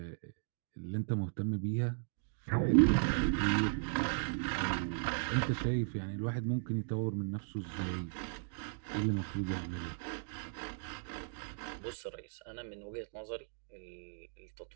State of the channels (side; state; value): left; silent; digital silence